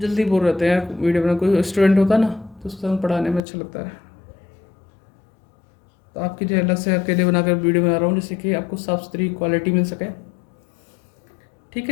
जल्दी बोर रहते हैं वीडियो बना, कोई स्टूडेंट होता ना तो उसके साथ पढ़ाने में अच्छा लगता है। तो आपके लिए अलग से अकेले बनाकर वीडियो बना रहा हूँ, जिससे कि आपको साफ सुथरी क्वालिटी मिल सके, ठीक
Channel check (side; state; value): right; drops out; at 3.4 s